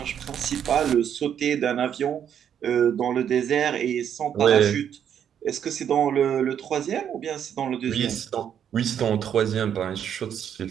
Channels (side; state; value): left; quieter; 8.9 dB